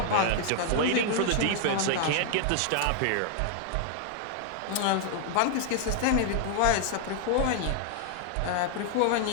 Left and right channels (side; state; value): both; different; correlation 0.00